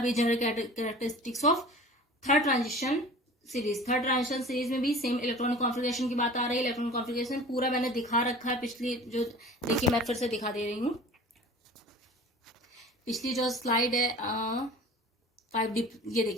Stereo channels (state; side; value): normal; both; correlation 0.41